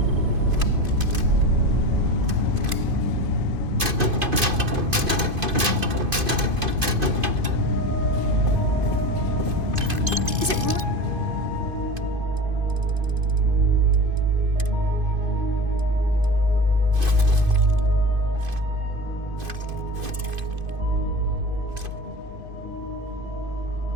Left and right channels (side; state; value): left; late; 2.5 ms